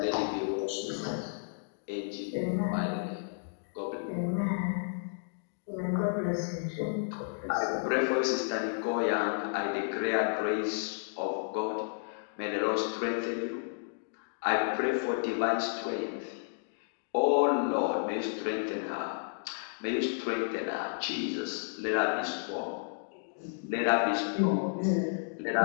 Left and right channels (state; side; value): silent; right; digital silence